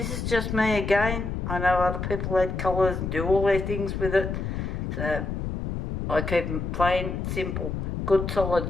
is just me again. I know other people add colours and do all their things with it. So, I keep them plain, simple, good solid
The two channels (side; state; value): left; noise; rumble, 3 dB below the sound